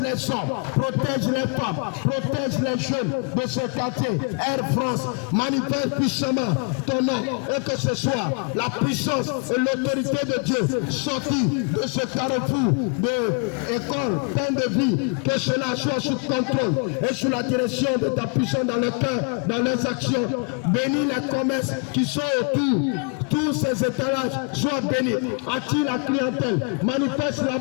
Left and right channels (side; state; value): right; quieter; 38.0 dB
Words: les hommes, protège les femmes, protège les jeunes de ce quartier. Air France, manifeste puissamment ton nom, et que ce soit la puissance et l'autorité de Dieu sortie de ce carrefour de école, plein de vie, que cela soit sous contrôle et sous la direction de ta puissance dans le cœur, dans leurs actions. Bénis les commerces qui sont autour, tous ces étalages soient bénis. Attire la clientèle, manifeste